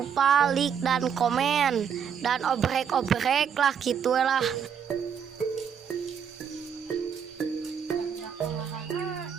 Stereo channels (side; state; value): left; quieter; 7.6 dB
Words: like dan komen dan obrek lah gitulah.